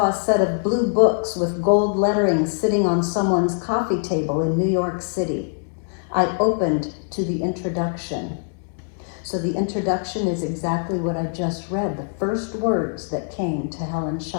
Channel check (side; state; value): right; silent; 64 dB below the other